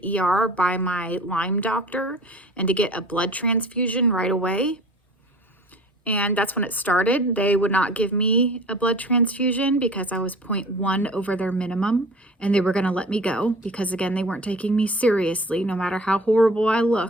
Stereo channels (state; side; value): normal; both; correlation 0.42